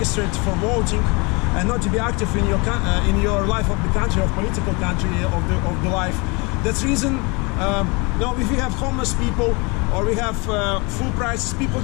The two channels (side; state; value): right; quieter; 28.7 dB